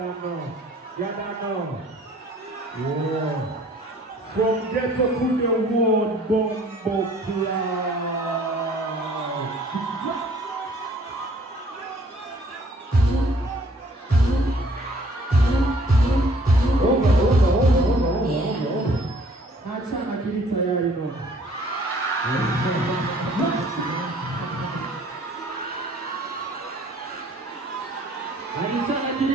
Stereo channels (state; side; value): normal; both; correlation 0.56